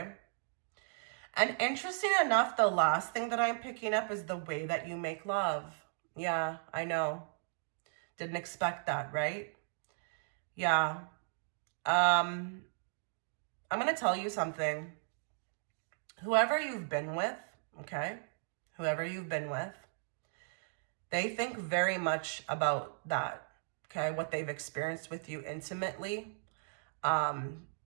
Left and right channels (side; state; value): left; silent; digital silence